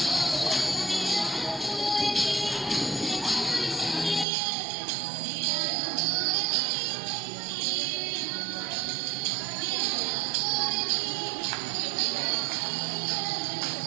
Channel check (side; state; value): left; drops out; at 4.2 s